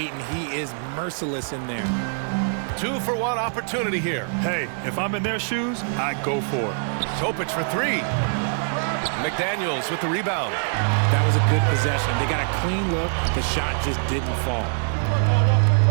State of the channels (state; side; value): silent; left; digital silence